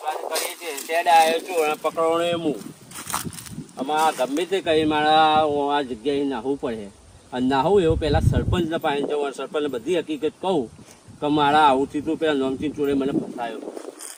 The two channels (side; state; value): both; identical; correlation 1.00